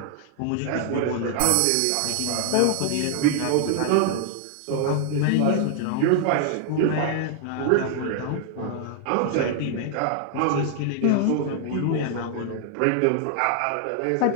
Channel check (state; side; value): different; both; correlation 0.00